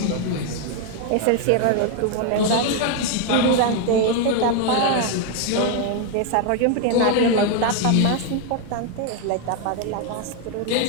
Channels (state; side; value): different; both; correlation 0.01